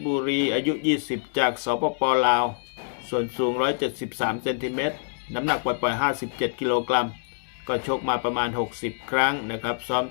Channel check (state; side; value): silent; right; digital silence